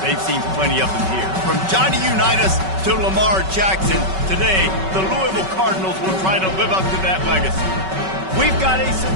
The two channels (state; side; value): late; left; 5.3 ms